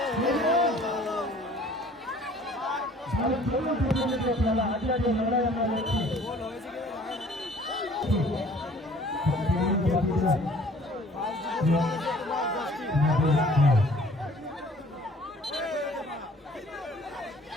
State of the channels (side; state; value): both; normal; correlation 0.53